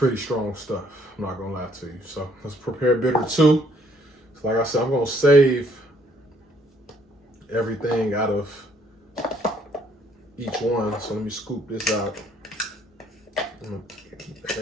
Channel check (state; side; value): normal; both; correlation 0.66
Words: strong stuff. I'm not gonna lie to you. So let's prepare bitter 2. So like I said, I'm gonna save everything out of each one. So let me scoop this out.